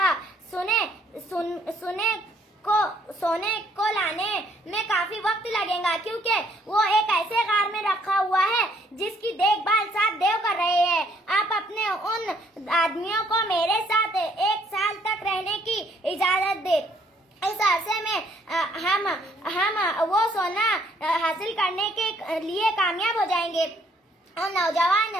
सोने को लाने में काफी वक्त लगेगा, क्योंकि वो एक ऐसे गार में रखा हुआ है जिसकी देखभाल 7 देव कर रहे हैं। आप अपने उन आदमियों को मेरे साथ 1 साल तक रहने की इजाजत दे। इस अरसे में हम वो सोना हासिल करने के लिए कामयाब हो जाएंगे। और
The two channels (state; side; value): normal; both; correlation 0.65